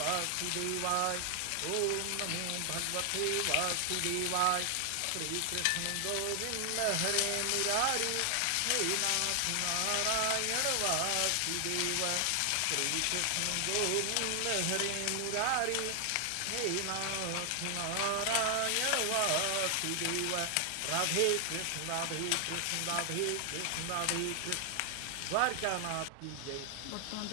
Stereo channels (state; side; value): different; both; correlation 0.00